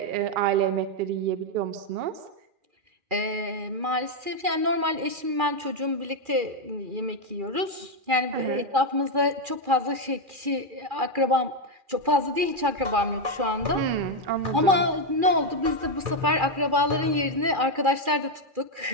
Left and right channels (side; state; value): left; late; 2.4 ms